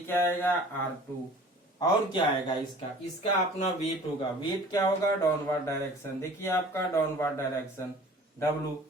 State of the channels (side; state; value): both; normal; correlation 0.47